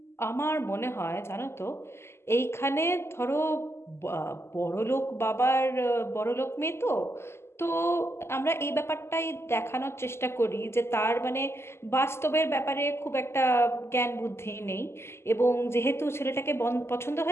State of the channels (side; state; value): right; late; 0.12 ms